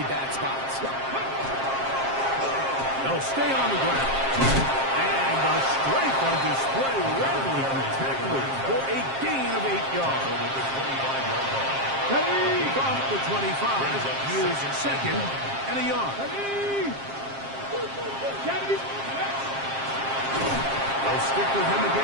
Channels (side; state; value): left; late; 7.5 ms